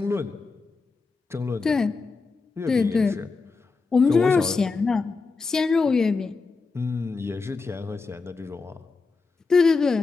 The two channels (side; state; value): right; quieter; 4.3 dB